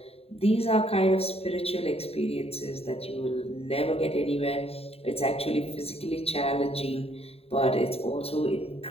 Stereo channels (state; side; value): late; right; 0.29 ms